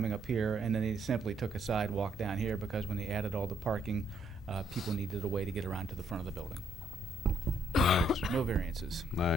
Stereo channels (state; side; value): normal; both; correlation 0.70